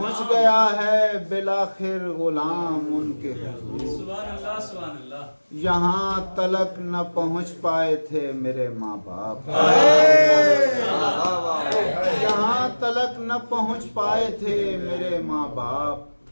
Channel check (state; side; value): inverted; both; correlation -1.00